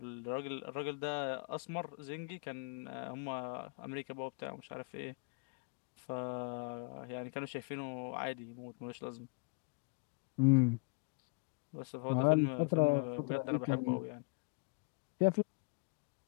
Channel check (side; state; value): right; quieter; 32.5 dB